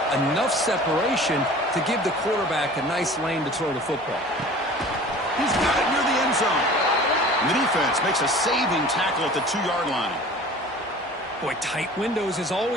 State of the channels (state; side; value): normal; both; correlation 0.43